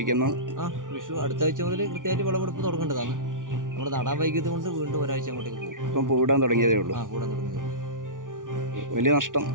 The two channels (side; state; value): left; late; 0.88 ms